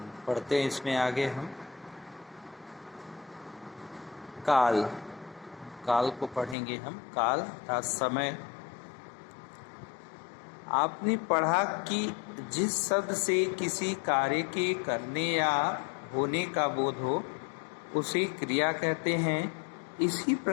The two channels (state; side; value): drops out; right; at 6.6 s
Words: पढ़ते हैं इसमें आगे हम काल काल को पढ़ेंगे। हम काल अर्थात समय। आपने पढ़ा कि जिस शब्द से किसी कार्य के करने या होने का बोध हो उसे क्रिया कहते हैं। इसी